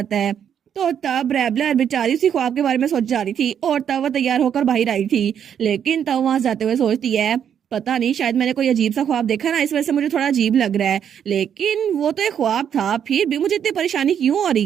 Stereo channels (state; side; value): quieter; left; 8.7 dB